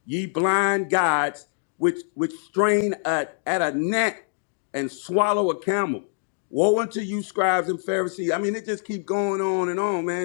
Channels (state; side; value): silent; right; digital silence